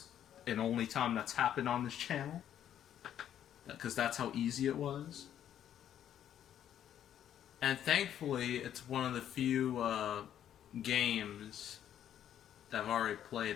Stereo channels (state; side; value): quieter; right; 10.3 dB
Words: and only time that's happened on this channel, because that's how easy it was. And thankfully, it's one of the few games that I've already